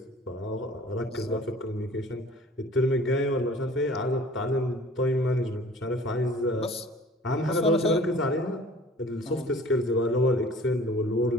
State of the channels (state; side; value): normal; both; correlation 0.48